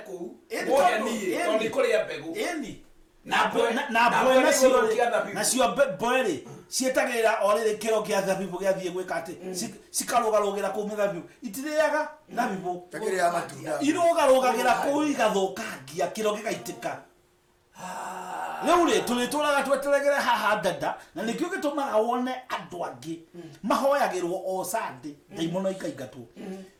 mugeni tondu kuria mbegu na cio mboeri cietagira orire kiro kia thabibu giathie gwika ati cikarugarugira ku mithabibu itiriaga thabibu takiria matunda irugarugagira ku igathukangia kiro gigaitika Leure tulituraga tweteregere haha dada na nikyo gitumaga wone andu angi mahoyagirwo o Sunday daimono ikaingatwo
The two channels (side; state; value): both; identical; correlation 1.00